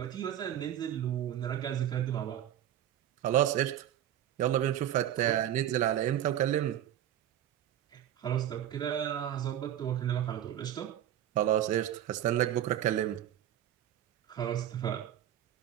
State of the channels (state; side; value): quieter; left; 11.3 dB